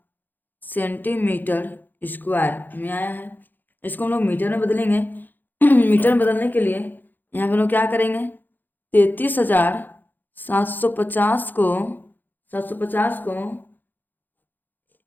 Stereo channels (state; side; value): late; right; 0.088 ms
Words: सेंटीमीटर स्क्वायर में आया है। इसको हम लोग मीटर में बदलेंगे। मीटर में बदलने के लिए यहाँ पे हम लोग क्या करेंगे? 33,750 को 750 को